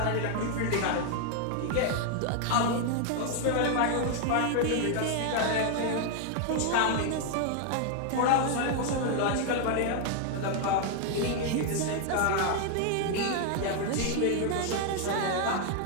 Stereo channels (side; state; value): both; different; correlation 0.00